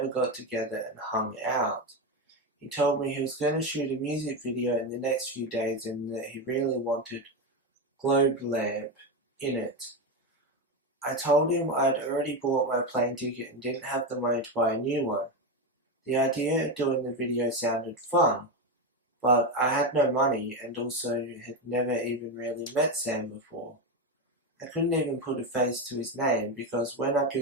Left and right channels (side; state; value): both; normal; correlation 0.13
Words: got together and hung out. He told me he was going to shoot a music video in the next few days and that he really wanted Globelamp in it. I told him I'd already bought my plane ticket and didn't have the money to buy a new one. The idea of doing the video sounded fun, but I had no money and also had never even really met Sam before. I couldn't even put a face to his name because when I